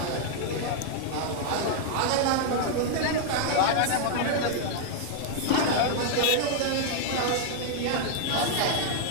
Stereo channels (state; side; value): different; both; correlation 0.00